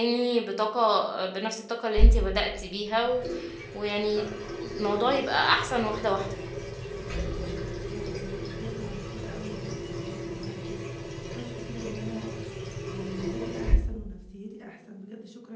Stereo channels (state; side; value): identical; both; correlation 1.00